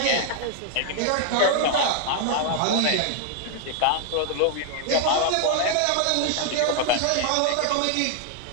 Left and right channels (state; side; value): different; both; correlation 0.00